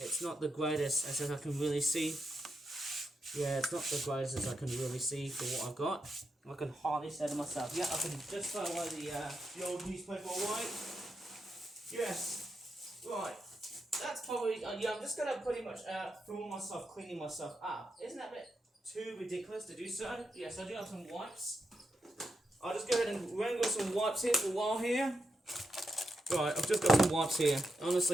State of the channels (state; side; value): normal; both; correlation 0.85